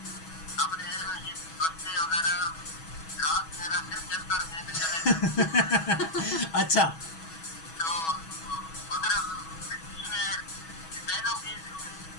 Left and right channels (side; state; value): right; late; 6.2 ms